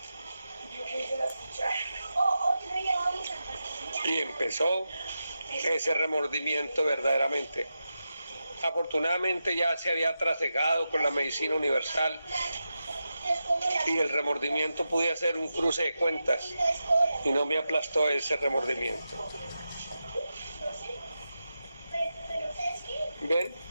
Y empezó ese remordimiento verdaderamente. Afortunadamente ya se había trasegado con la medicina universal y el remordimiento podía ser un cruce de cuentas y no me aplastó ese remordimiento. ¿Ven?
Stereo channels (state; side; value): inverted; both; correlation -0.90